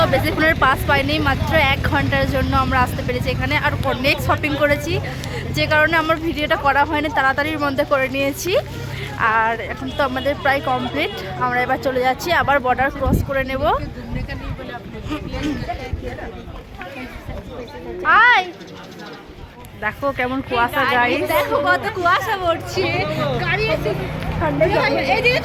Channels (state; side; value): identical; both; correlation 1.00